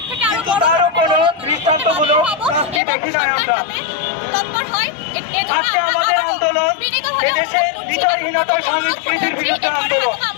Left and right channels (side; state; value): right; drops out; at 2.8 s